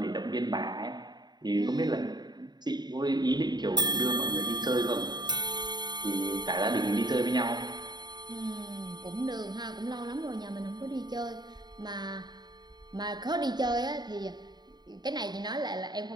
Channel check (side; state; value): left; late; 0.20 ms